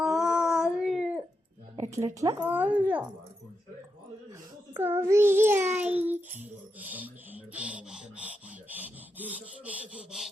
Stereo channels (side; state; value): both; normal; correlation 0.86